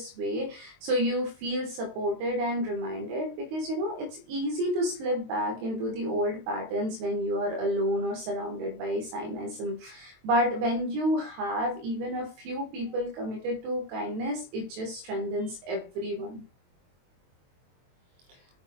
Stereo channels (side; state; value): left; late; 23 ms